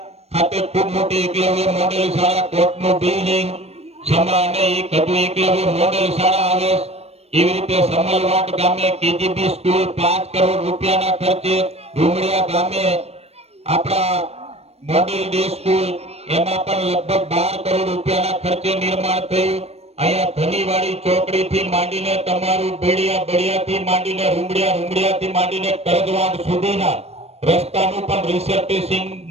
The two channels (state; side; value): late; left; 0.30 ms